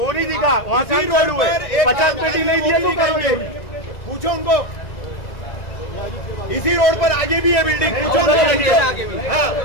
नहीं दिखा, वहाँ काम चालू है। 50 पेटी नहीं दिया तो करोगे, पूछो उनको। इसी रोड पर आगे भी है बिल्डिंग, पूछो उनको,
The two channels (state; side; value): late; right; 2.0 ms